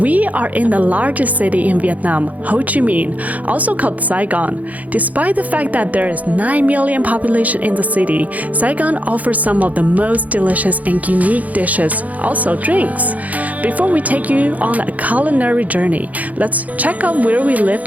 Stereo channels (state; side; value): late; left; 0.075 ms